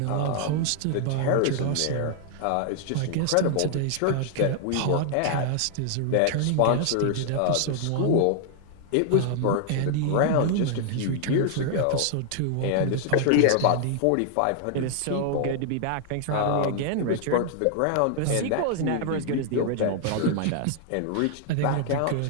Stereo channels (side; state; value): both; different; correlation 0.00